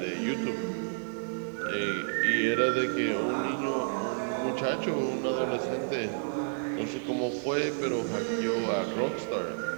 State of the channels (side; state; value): left; silent; digital silence